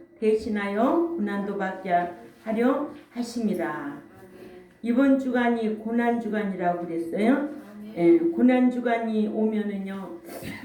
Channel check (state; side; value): identical; both; correlation 1.00